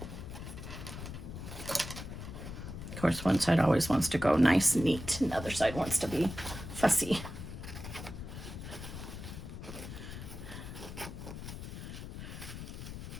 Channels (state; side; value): noise; left; rumble, 9 dB below the sound